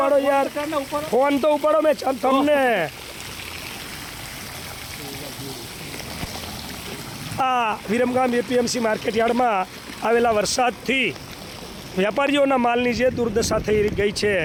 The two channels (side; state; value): both; identical; correlation 1.00